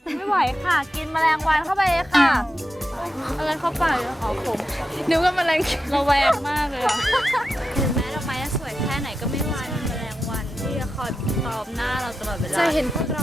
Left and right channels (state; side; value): normal; both; correlation 0.89